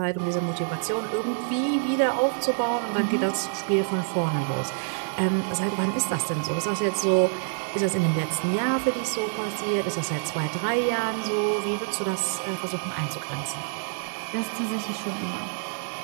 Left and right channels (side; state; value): left; silent; 58 dB below the other